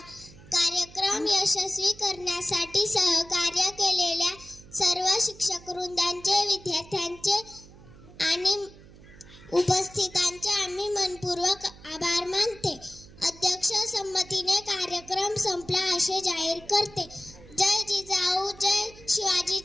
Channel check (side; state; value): right; noise; hum, 21 dB below the sound